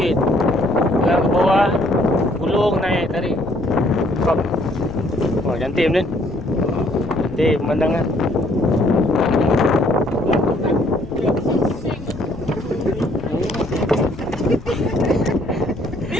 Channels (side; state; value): left; noise; rumble, 15 dB below the sound